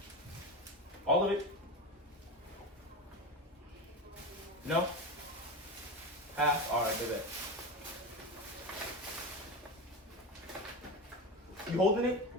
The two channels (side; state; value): both; normal; correlation 0.23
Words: All of it? No? Half? Alright, do that. You holding it?